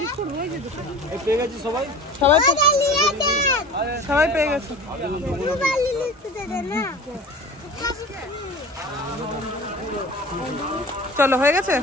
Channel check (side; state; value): both; normal; correlation 0.38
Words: এই পেয়ে গেছি সবাই। সবাই সবাই পেয়ে গেছে। চলো হয়ে গেছে।